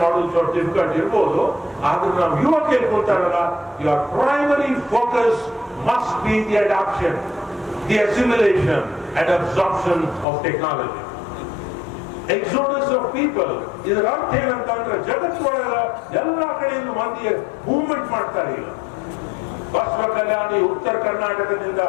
ಮಾಡೋದು ಸ್ವಲ್ಪ ಡಿಫಿಕಲ್ಟ್ ಇರ್ಬೋದು. ಆದ್ರೆ ನಾವು ಯುವಕರು ಕೂತಾರಲ್ಲ, your primary focus must be the adoption, the assimilation and absorption of technology. Exodus of people. ಇದರ ಅರ್ಥ ಏನಂತಂದ್ರೆ ಜಗತ್ತೊಳಗ ಎಲ್ಲಾ ಕಡೆಯಿಂದ ಮಂದಿ ಮೂವ್ಮೆಂಟ್ ಮಾಡ್ತಾರೆ. ಈಗ ಬಸವ ಕಲ್ಯಾಣಿ ಉತ್ತರ ಕರ್ನಾಟಕದಿಂದ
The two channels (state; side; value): drops out; right; at 10.2 s